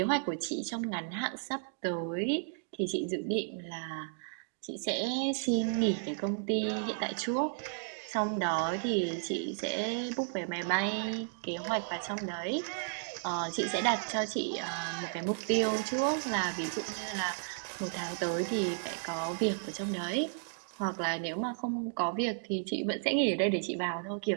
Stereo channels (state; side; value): silent; left; digital silence